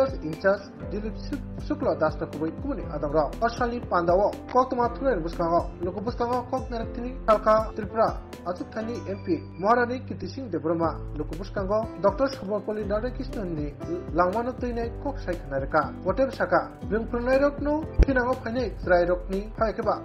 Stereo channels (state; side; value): identical; both; correlation 1.00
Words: इंचार्ज दिलीप शुक्ल दासनो खबै कुमनि आदंराव असालि पान्दाव कक्तमा थुरेन बुस्कांग लोक बुस्कांग कक नारकथिनि कालका त्रिपुरा आचुकथायनि एमपी महरानि कीर्तिसिं देबरमा लोक बुस्कांग डॉक्टर सर्वपल्ली राधाकृष्णननि लांमानो तैनाय कक सायखनारका वटेब साका रोंफोरनाय रकनो फिनांगो फायनाय ज्राय रकनि फायकेबा